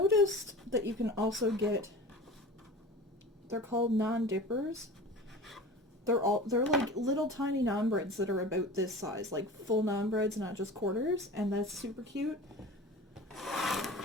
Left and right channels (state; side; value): normal; both; correlation 0.36